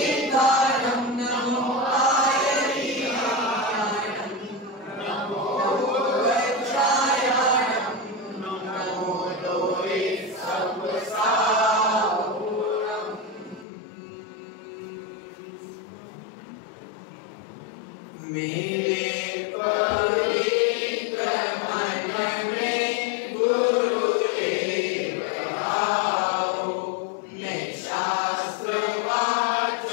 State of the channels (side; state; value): right; drops out; at 13.7 s